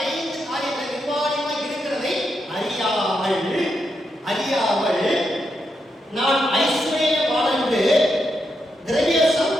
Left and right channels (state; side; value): normal; both; correlation 0.83